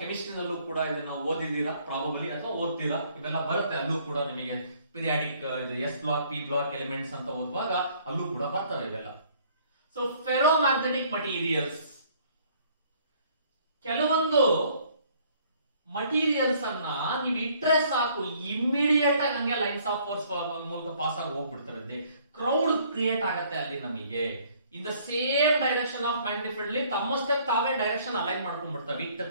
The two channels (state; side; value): inverted; both; correlation -0.60